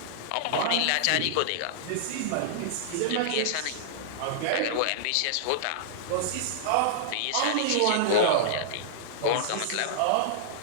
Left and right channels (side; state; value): both; different; correlation -0.02